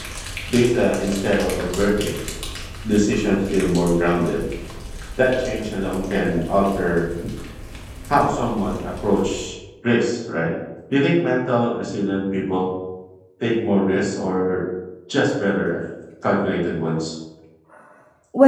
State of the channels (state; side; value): identical; both; correlation 1.00